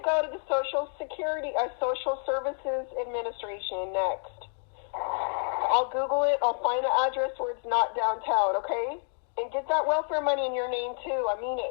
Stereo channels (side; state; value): right; silent; 59 dB below the other